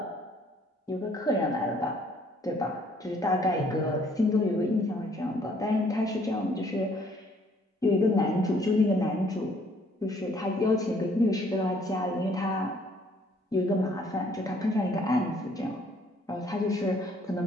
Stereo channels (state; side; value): normal; both; correlation 0.63